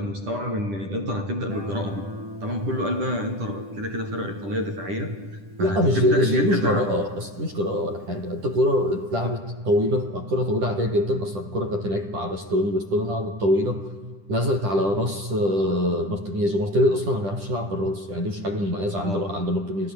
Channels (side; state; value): left; late; 10 ms